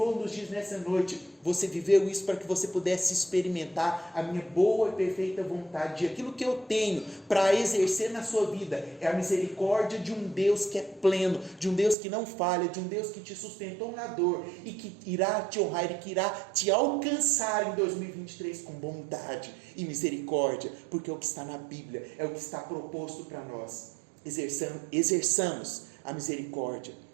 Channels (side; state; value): left; drops out; at 12.0 s